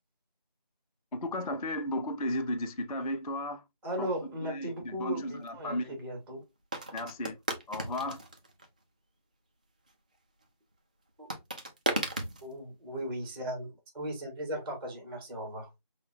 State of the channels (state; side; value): inverted; both; correlation -0.44